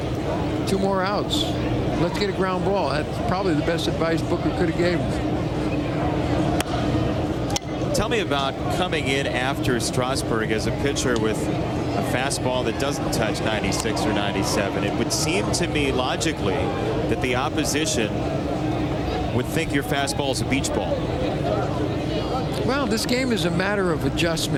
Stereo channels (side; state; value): both; identical; correlation 1.00